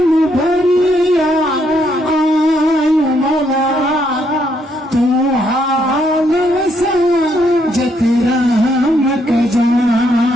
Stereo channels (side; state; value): both; normal; correlation 0.73